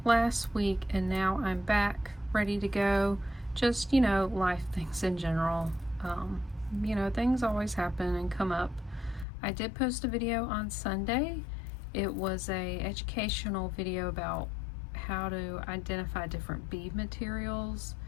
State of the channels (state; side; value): drops out; right; at 9.2 s